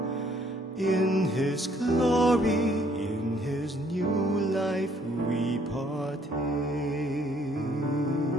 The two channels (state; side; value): normal; both; correlation 0.64